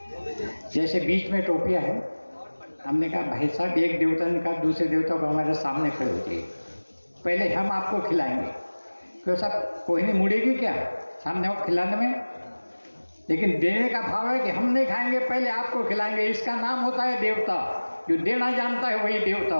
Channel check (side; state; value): both; inverted; correlation -1.00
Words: जैसे बीच में टोपिया है, हमने कहा भाई साहब, एक देवता ने कहा दूसरे देवता को हमारे सामने खड़े हो जाइए, पहले हम आपको खिलाएंगे। क्यों साहब, कोई नहीं मुड़ेगी क्या सामने हो खिलाने में? लेकिन देने का भाव है कि हम नहीं खाएंगे, पहले आपको खिलाएंगे। इसका नाम होता है देवता। जो देना जानता है वही देवता